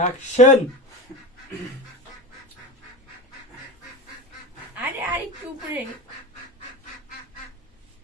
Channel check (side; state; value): both; normal; correlation 0.27